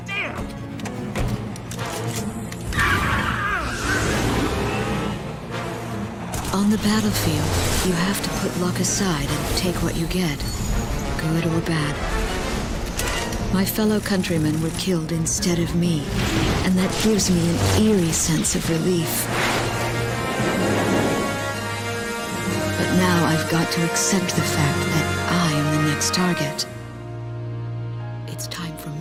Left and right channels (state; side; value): identical; both; correlation 1.00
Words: Damn! On the battlefield, you have to put luck aside and take what you get, good or bad. My fellow countrymen were killed instead of me, and that gives me an eerie sense of relief. But now I've got to accept the fact that I am the next target. It's time for